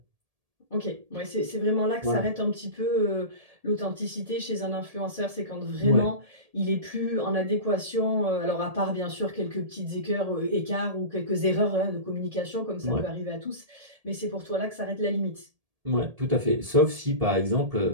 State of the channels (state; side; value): late; left; 1.8 ms